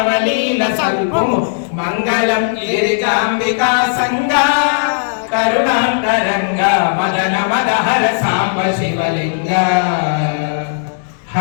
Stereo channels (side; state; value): right; silent; digital silence